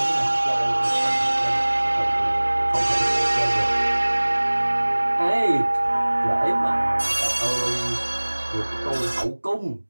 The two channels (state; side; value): inverted; both; correlation -1.00